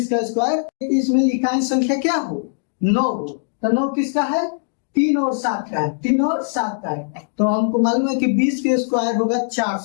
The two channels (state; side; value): silent; right; digital silence